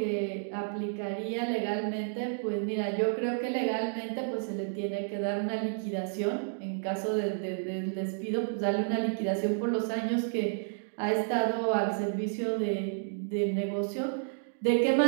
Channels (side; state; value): left; silent; digital silence